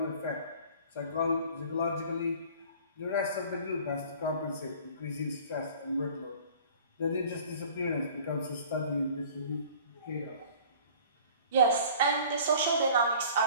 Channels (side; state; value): both; inverted; correlation -0.48